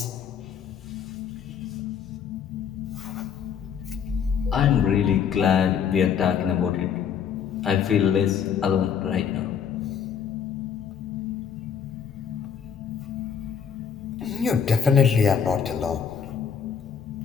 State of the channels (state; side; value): quieter; right; 7.5 dB